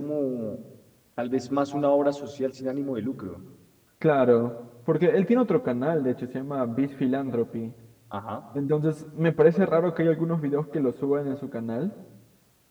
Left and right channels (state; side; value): identical; both; correlation 1.00